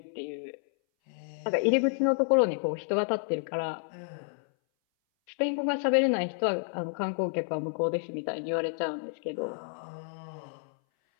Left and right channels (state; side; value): silent; right; 58 dB below the other